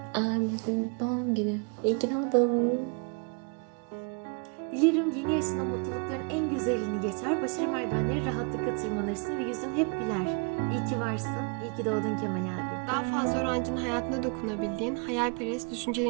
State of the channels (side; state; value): left; quieter; 36.2 dB